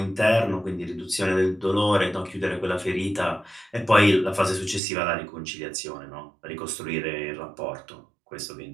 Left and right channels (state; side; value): drops out; left; at 4.8 s